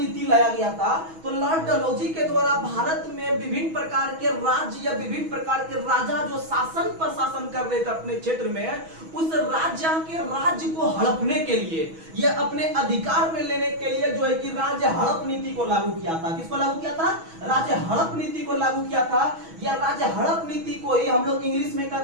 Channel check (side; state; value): left; late; 6.2 ms